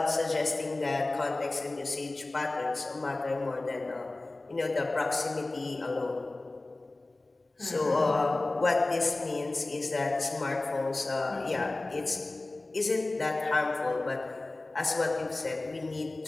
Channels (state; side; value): quieter; right; 3.0 dB